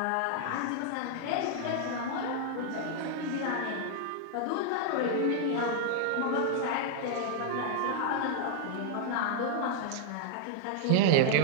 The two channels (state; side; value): different; both; correlation 0.00